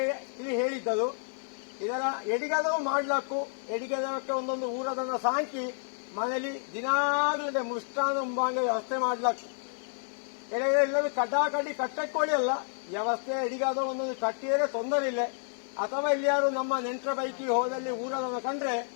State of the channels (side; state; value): right; silent; digital silence